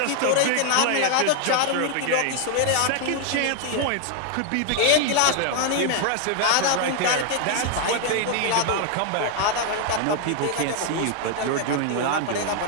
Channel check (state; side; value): different; both; correlation 0.00